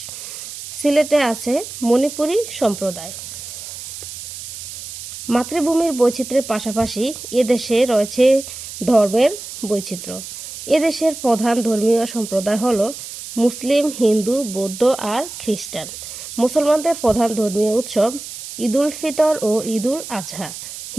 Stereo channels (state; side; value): noise; right; hiss, 11 dB below the sound